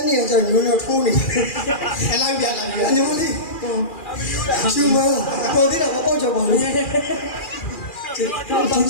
နေကြညိုးညိုးထိုးနေအလိုက်ပြလာပြီအညိုးလေးရှူမပေါ်သေးတာမပေါက်ကြပါဘူးကျတော့တောင်း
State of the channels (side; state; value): right; late; 2.4 ms